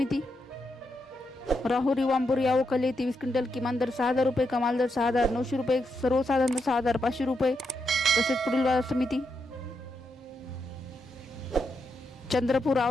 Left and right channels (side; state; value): both; normal; correlation 0.83